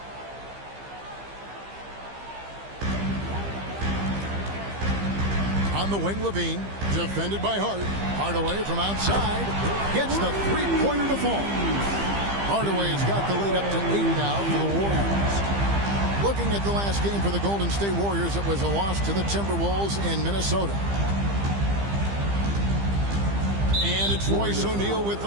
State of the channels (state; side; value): late; left; 15 ms